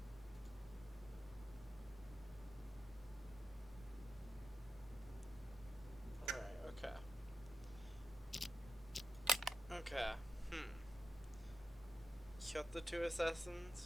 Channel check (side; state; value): both; normal; correlation 0.88